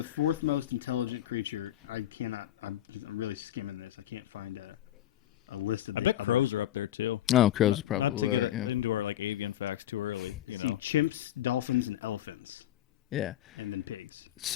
fourth most intelligent creature. I'm really skimming this. I can't find a list of it. I think crows are up there too. Oh, crows probably are. Yeah. Chimps, dolphins, and elephants. Yeah. And then pigs.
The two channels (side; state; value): right; quieter; 12.7 dB